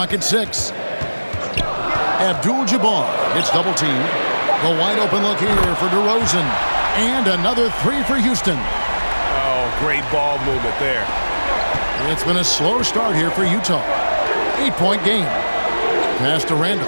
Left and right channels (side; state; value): both; inverted; correlation -1.00